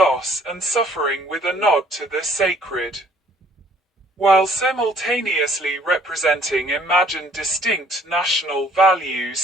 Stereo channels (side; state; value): both; normal; correlation 0.60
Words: and suffering with a nod to the sacred, while simultaneously representing imagined distinct national values